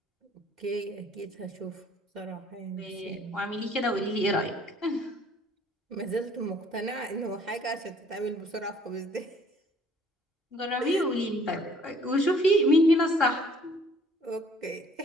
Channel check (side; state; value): both; normal; correlation 0.58